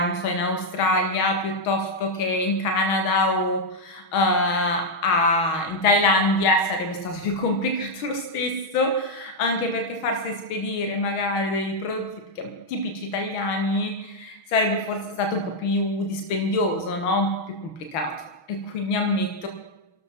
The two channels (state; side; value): late; right; 6.3 ms